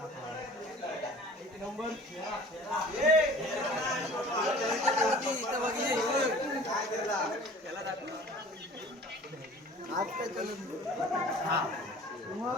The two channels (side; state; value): both; normal; correlation 0.46